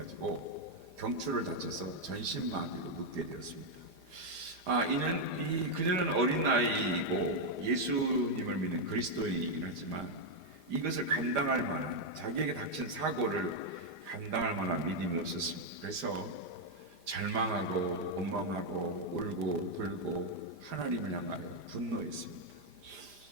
경추를 다쳐서 전신마비로 눕게 되었습니다. 그녀는 어린 나이이고 예수님을 믿는 그리스도인이긴 하지만 이것을 감당할 만한, 자기에게 닥친 사고를 감당할 만한 믿음이 없었습니다. 그래서 절망하고 원망하고 울고 불고 하나님을 향하여 분노했습니다.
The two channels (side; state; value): left; late; 5.0 ms